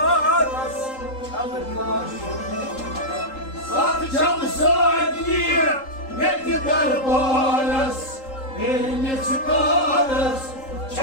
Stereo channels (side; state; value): right; late; 3.8 ms